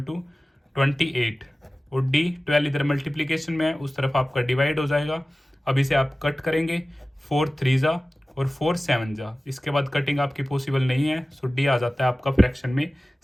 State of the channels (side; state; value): both; normal; correlation 0.97